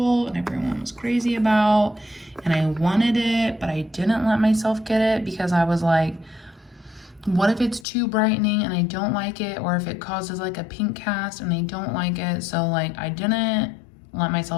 and everyone was crazy about, and I wanted it, but I didn't let myself get it because I was like, what if it's too brightening and I don't like it, or if it causes like a pink cast and I don't like it. So like I didn't let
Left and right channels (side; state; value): right; drops out; at 7.9 s